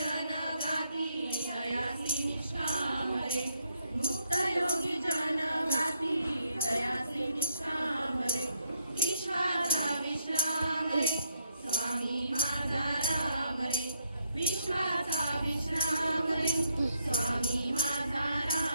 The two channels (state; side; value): inverted; both; correlation -0.68